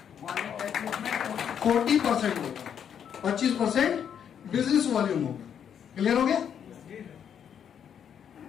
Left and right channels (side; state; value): right; quieter; 8.4 dB